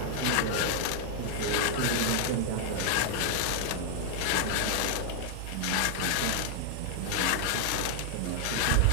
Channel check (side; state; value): both; different; correlation 0.00